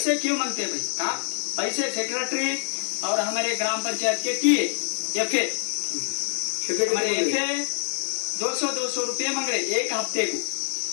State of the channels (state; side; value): silent; right; digital silence